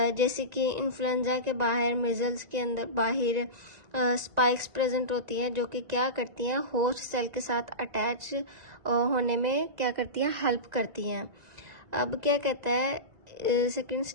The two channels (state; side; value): late; left; 1.9 ms